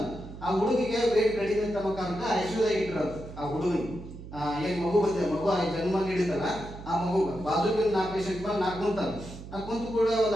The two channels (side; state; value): right; noise; hum, 13 dB below the sound